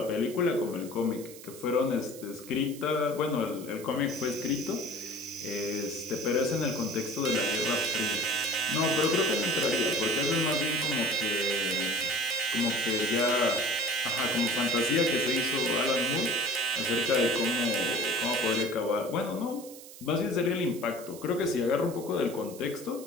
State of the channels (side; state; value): right; noise; hiss, 17 dB below the sound